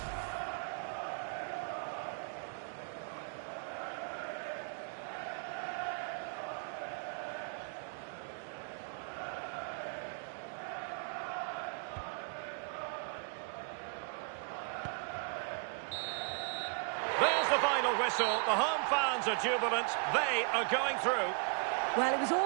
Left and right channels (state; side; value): quieter; left; 39.5 dB